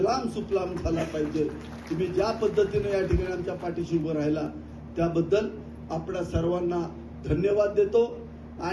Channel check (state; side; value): identical; both; correlation 1.00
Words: सुफलाम झाला पाहिजे. तुम्ही ज्या पद्धतीने या ठिकाणी आमच्या पाठीशी उभं राहिला त्याबद्दल आपल्या सर्वांना धन्यवाद देतो.